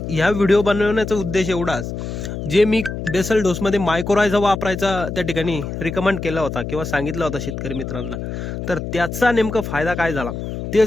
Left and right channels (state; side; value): noise; left; hum, 6 dB below the sound